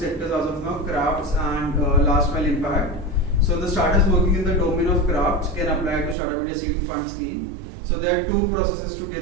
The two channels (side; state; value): left; drops out; at 6.2 s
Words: as of now: crafts and last mile impact. So the startups working in the domain of crafts can apply to Startup India Seed Fund Scheme. So there are 2 processes to